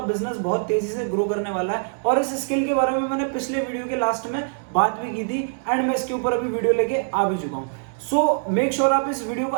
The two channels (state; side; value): silent; left; 63 dB below the other